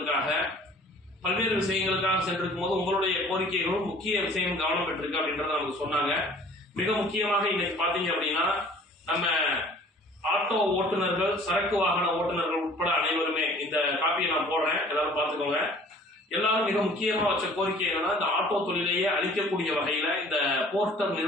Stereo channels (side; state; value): both; normal; correlation 0.50